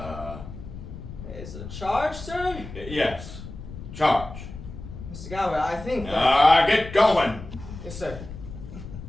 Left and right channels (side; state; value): left; noise; rumble, 12 dB below the sound